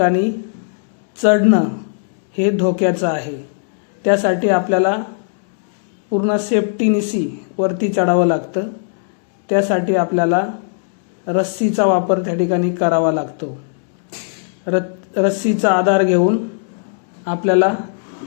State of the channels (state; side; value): silent; right; digital silence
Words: चढणं हे धोक्याचं आहे. त्यासाठी आपल्याला पूर्ण सेफ्टीनिशी वरती चढावं लागतं. त्यासाठी आपल्याला रस्सीचा वापर त्या ठिकाणी करावा लागतो. रस्सीचा आधार घेऊन आपल्याला